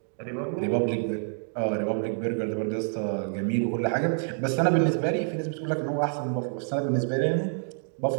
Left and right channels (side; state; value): left; silent; 60 dB below the other